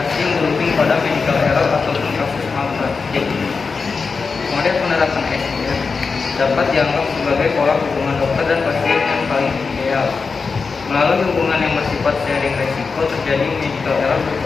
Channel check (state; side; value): quieter; right; 4.8 dB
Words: yang berujung pada medical error ataupun kasus malpraktik. Model penerapan SDM dapat dianggap sebagai pola hubungan dokter dan pasien yang paling ideal. Melalui hubungan yang bersifat sharing resiko, terjadi medical error